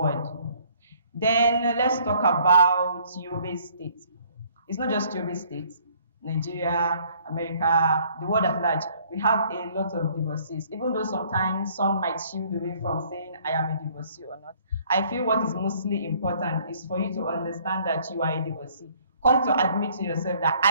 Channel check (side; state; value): both; inverted; correlation -0.61